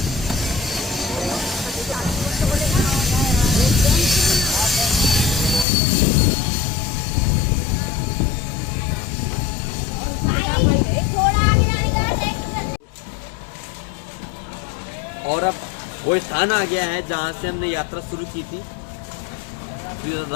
और अब वो स्थान आ गया है जहाँ से हमने यात्रा शुरू की थी,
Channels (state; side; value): drops out; right; at 5.7 s